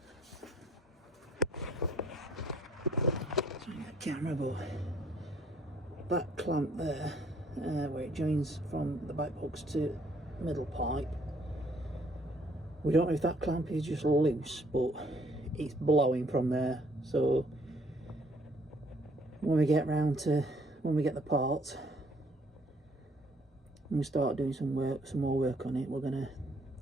Showing the camera, but that clamp there, where it joins from the back box to middle pipe, we don't know if that clamp is just loose, but it's blowing from there. So when we get the parts, when we start doing some more work on it, we're going to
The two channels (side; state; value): both; normal; correlation 0.63